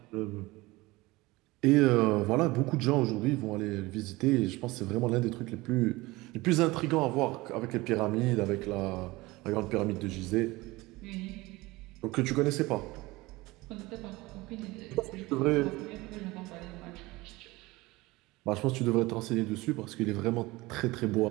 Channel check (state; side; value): quieter; left; 21.1 dB